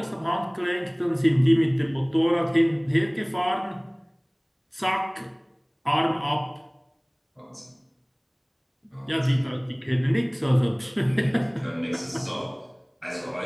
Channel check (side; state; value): both; identical; correlation 1.00